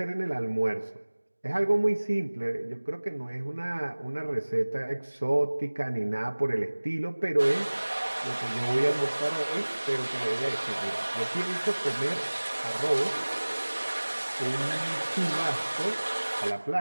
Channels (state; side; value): inverted; both; correlation -1.00